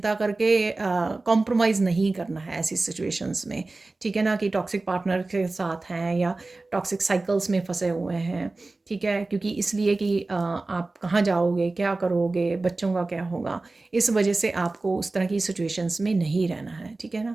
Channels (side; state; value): left; quieter; 3.3 dB